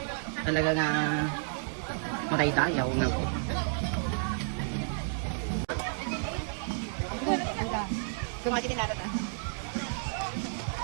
Talaga nga matay-dayaw nga po. Kumaki din natin.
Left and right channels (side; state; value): left; silent; digital silence